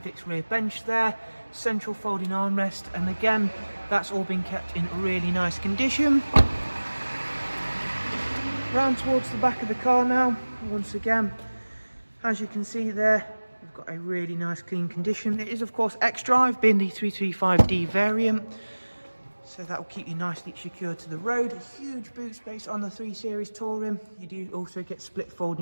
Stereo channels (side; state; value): both; inverted; correlation -1.00